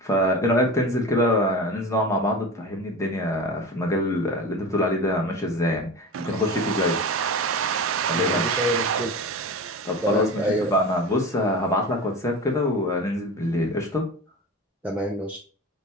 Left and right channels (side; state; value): both; normal; correlation 0.30